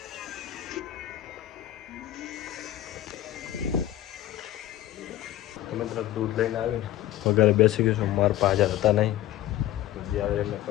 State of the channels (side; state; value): right; quieter; 13.6 dB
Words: મિત્ર દૂધ લઈને આવીને વગેરે બેસી ગયું છું. મારા પાસે હાજર હતા નહીં, જે આવે એમને